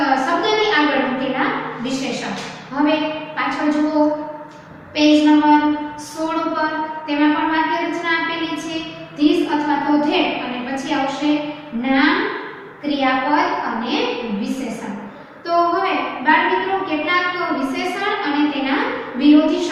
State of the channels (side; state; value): both; identical; correlation 1.00